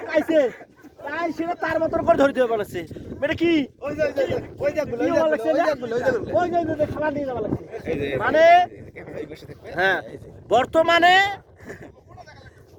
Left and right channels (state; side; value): identical; both; correlation 1.00